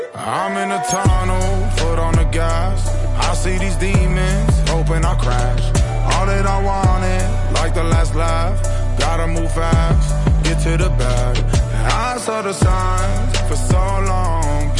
I'm in a tunnel, foot on the gas. I see these demons, hoping I crash. All that I wanted, like the last laugh. Gotta move fast, get to the bag. I saw the signs for so long,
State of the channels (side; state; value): both; identical; correlation 1.00